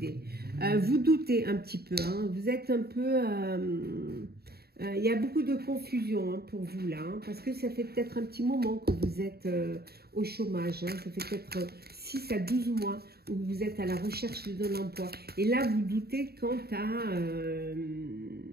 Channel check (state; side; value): late; left; 0.46 ms